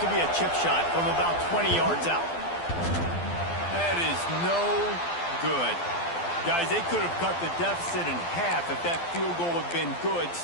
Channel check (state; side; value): late; right; 12 ms